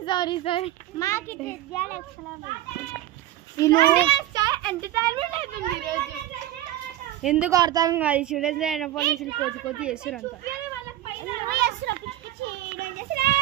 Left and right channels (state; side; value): quieter; left; 13.9 dB